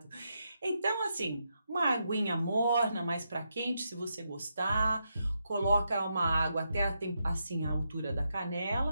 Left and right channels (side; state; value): both; inverted; correlation -0.83